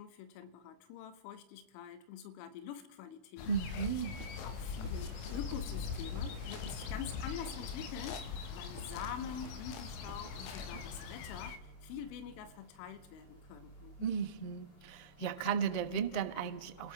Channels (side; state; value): right; late; 28 ms